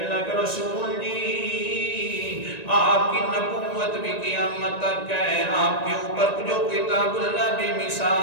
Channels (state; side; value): late; right; 1.9 ms